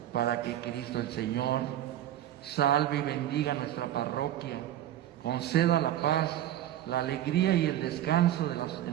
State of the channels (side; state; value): left; quieter; 12.5 dB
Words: Para que Cristo el Señor salve y bendiga nuestra parroquia, conceda la paz, la alegría y el descanso